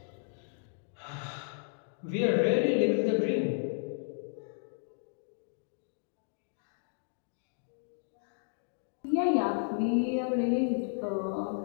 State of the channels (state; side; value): silent; right; digital silence